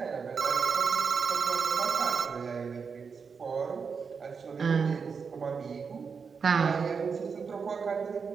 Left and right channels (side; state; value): left; quieter; 5.7 dB